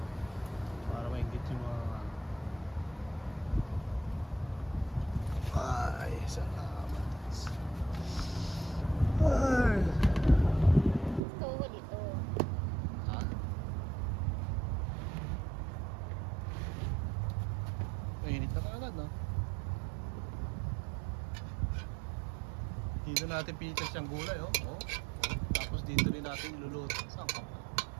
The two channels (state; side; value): drops out; left; at 11.2 s